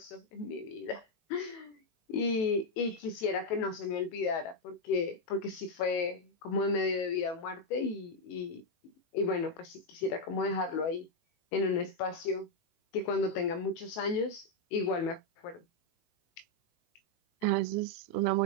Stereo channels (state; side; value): late; right; 18 ms